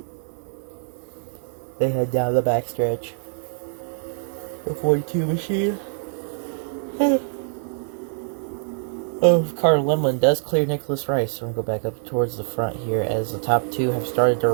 they head down the backstretch. The 42 machine. Carter Lemlin does clear Nicholas Rice. So we're going to go back up towards the front here, as the top two have started to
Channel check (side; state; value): left; silent; 59 dB below the other